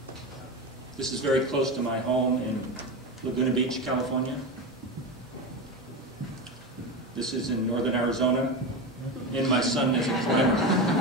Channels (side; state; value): both; normal; correlation 0.19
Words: This is very close to my home in Laguna Beach, California. This is in northern Arizona, and my son is a climber.